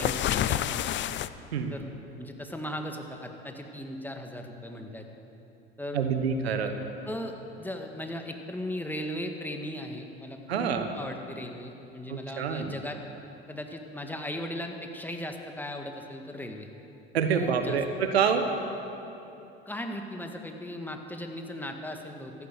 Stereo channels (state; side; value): normal; both; correlation 0.29